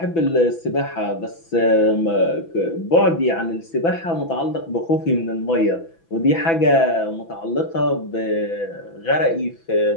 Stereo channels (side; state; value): right; late; 6.0 ms